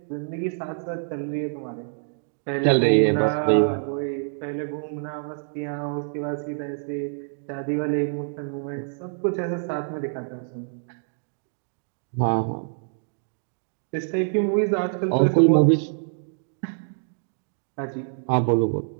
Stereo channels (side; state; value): left; silent; digital silence